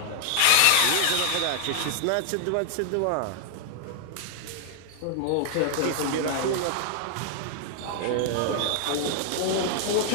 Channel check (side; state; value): both; different; correlation -0.01